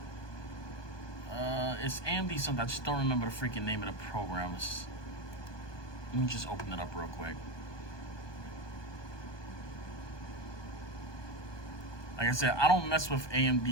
It's AMD something. I just don't remember the freaking name of the program. Let me just open it up real quick. Like I said, I don't mess with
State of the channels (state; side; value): late; right; 1.2 ms